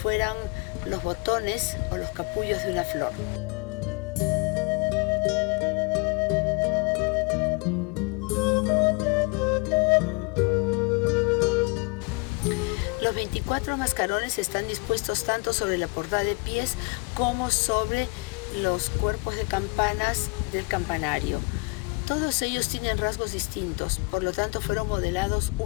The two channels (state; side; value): quieter; right; 30.0 dB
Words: los botones o los capullos de una flor. Los 24 mascarones están dispuestos tanto sobre la portada de pies como sobre los cuerpos de campanas del campanario. Todos ellos tienen rasgos distintos, por lo tanto fueron modelados